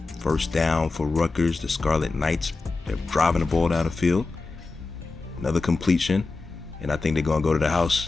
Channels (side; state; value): right; quieter; 3.8 dB